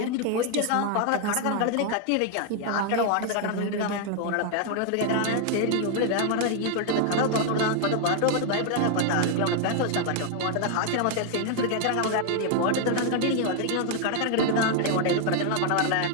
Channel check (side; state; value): both; different; correlation 0.00